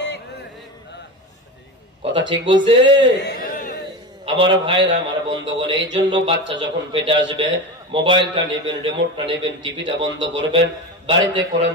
কথা ঠিক বলছে আমার ভাইরা, আমার বন্ধুগণ। এই জন্য বাচ্চা যখন পেটে আসবে মোবাইলটা নেবেন, রিমোটটা নেবেন, টিভিটা বন্ধ করবেন, বাড়িতে কোরআন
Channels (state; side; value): normal; both; correlation 0.25